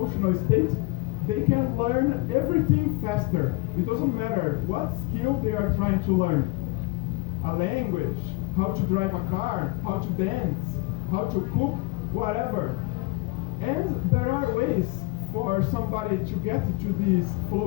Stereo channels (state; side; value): quieter; right; 24.0 dB